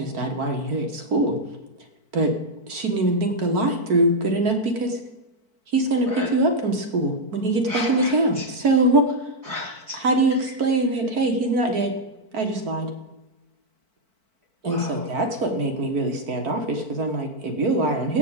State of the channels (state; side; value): late; left; 4.5 ms